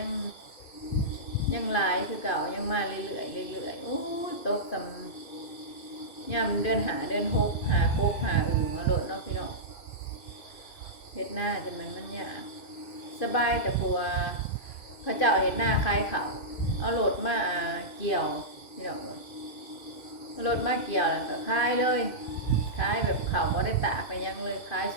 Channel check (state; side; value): late; right; 2.5 ms